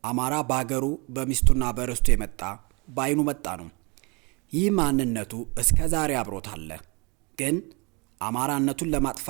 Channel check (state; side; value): quieter; left; 29.5 dB